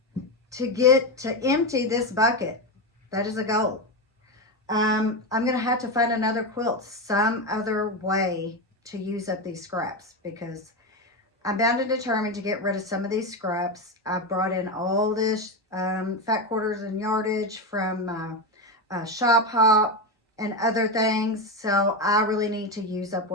to get to empty this bucket, that is a goal. I'm going to have to find another quilt, some other way to use up these scraps, because I'm bound and determined to get rid of some of these scraps. I've brought in all this fat quarters and yardage from Shop Hop and other things. So I really need to use up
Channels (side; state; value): both; normal; correlation 0.14